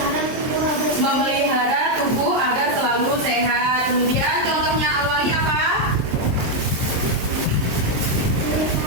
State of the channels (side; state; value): left; late; 23 ms